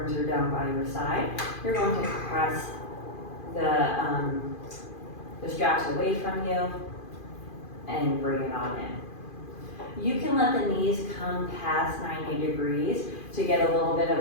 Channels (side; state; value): right; late; 2.4 ms